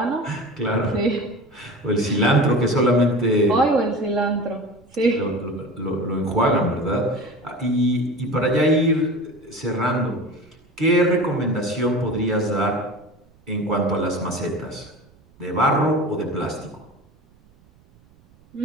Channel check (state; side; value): noise; right; rumble, 30 dB below the sound